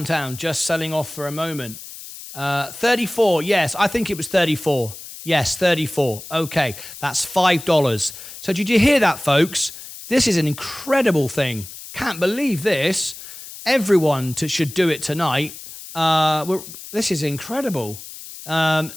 just selling off for a moment. 34. Yes, I think it was 34. Yes, 34. Okay, that's $5. So did you hear that, folks? This is an incredible thing. Can't believe this. Everyone should do it tonight. This is incredible.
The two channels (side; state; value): left; noise; hiss, 14 dB below the sound